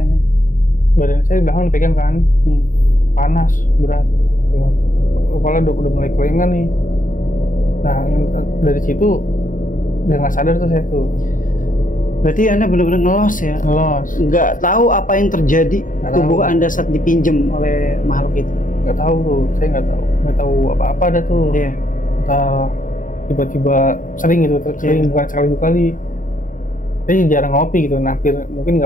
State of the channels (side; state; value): right; late; 0.38 ms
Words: Badan saya di belakang dipegang kan, panas, berat. Kepala udah mulai kelengan nih. Nah, dari situ udah nggak sadar tuh saya tuh. Berarti Anda benar-benar ngelos ya? Ngelos. Nggak tahu apa yang terjadi tubuh Anda saat dipinjem oleh makhluk itu? Nggak tahu tuh, saya nggak tahu apa-apa ada tuh. Iya. Entah tiba-tiba sering gitu, sering bukan sekali dua kali. Saya jarang ngopi gitu, mungkin